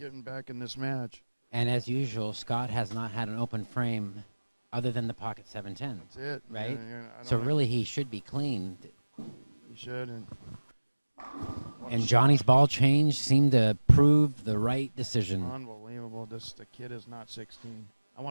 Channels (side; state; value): both; inverted; correlation -1.00